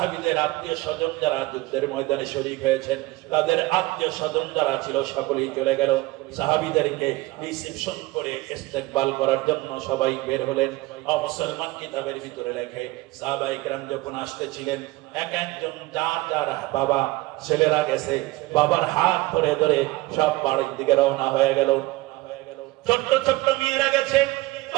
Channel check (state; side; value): quieter; left; 19.9 dB